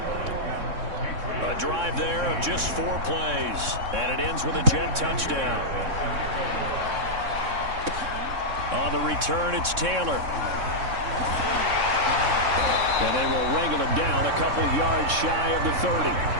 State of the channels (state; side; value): late; left; 3.6 ms